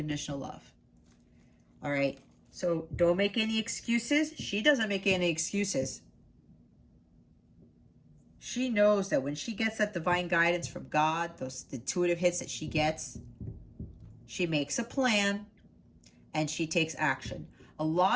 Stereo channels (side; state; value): both; identical; correlation 1.00